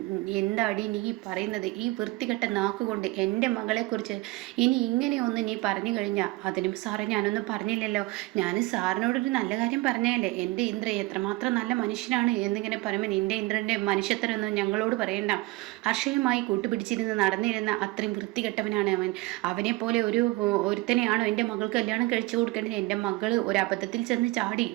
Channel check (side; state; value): left; quieter; 21.2 dB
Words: എന്താടി നീ പറയുന്നത്? ഈ വൃത്തികെട്ട നാക്കുകൊണ്ട് എൻ്റെ മകളെക്കുറിച്ച് ഇനി ഇങ്ങനെയൊന്ന് നീ പറഞ്ഞു കഴിഞ്ഞാൽ, അതിനും സാറേ ഞാനൊന്നും പറഞ്ഞില്ലല്ലോ, ഞാൻ സാറിനോടൊരു നല്ല കാര്യം പറഞ്ഞല്ലേ. എൻ്റെ ഇന്ദ്ര എത്രമാത്രം നല്ല മനുഷ്യനാണ് എന്നിങ്ങനെ പറയുമ്പോൾ നിൻ്റെ ഇന്ദ്രൻ്റെ മനുഷ്യത്തരൊന്നും ഞങ്ങളോട് പറയണ്ട. ഹർഷയുമായി കൂട്ടുപിടിച്ചിരുന്ന് നടന്നിരുന്ന അത്രയും വൃത്തികെട്ടവനാണ് അവൻ. അവനെ പോലെ ഒരുത്തനെയാണോ എൻ്റെ മകൾക്ക് കല്യാണം കഴിച്ചു കൊടുക്കേണ്ടത്? എൻ്റെ മകൾ ഒരു അബദ്ധത്തിൽ ചെന്ന് ചാടി.